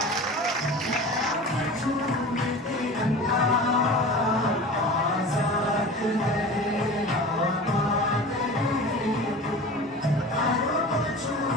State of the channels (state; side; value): normal; both; correlation 0.36